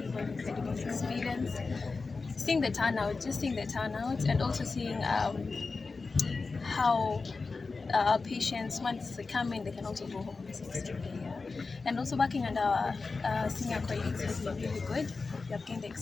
experience. Seeing the turnout, and also seeing how our patients, once they come in, they can also go home successfully. And also working under our senior colleagues has been really good. We have gained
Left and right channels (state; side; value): quieter; right; 4.1 dB